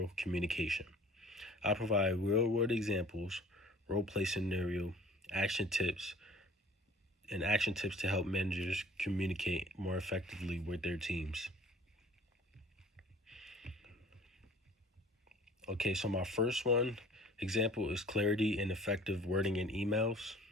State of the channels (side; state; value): both; normal; correlation 0.49